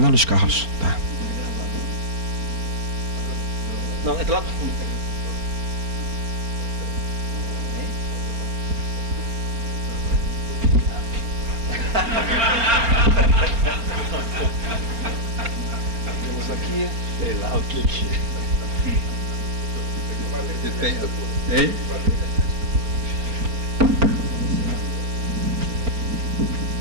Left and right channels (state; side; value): late; left; 4.3 ms